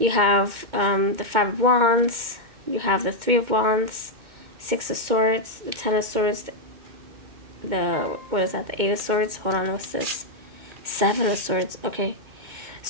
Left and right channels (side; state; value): left; late; 2.1 ms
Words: have the Five of Wands. You have the Three of Wands, Six of Swords, the Ten of Swords, the, what is that, the Eight of Swords? Hold on, what's this? Seven of Swords. Okay.